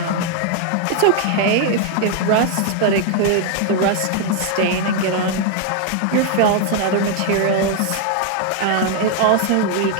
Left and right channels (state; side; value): different; both; correlation 0.00